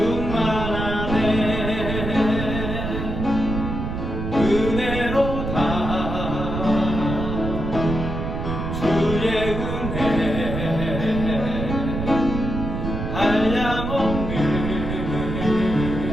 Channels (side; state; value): right; noise; rumble, 4 dB below the sound